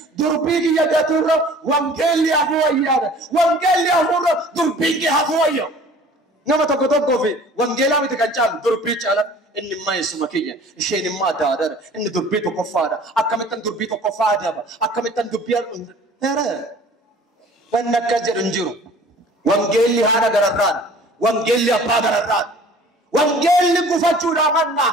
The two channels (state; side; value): normal; both; correlation 0.48